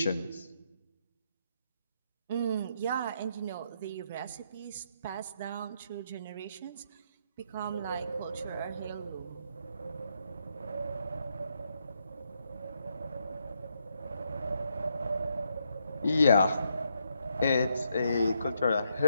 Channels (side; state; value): both; inverted; correlation -0.77